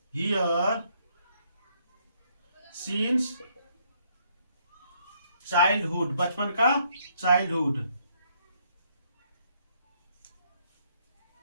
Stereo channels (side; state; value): both; inverted; correlation -0.70